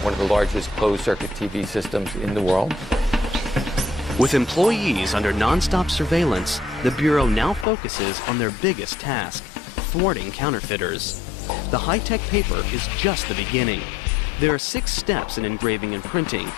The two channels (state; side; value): drops out; right; at 7.7 s